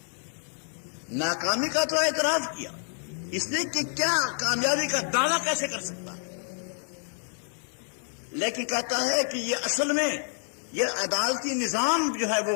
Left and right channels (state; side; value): silent; right; 59 dB below the other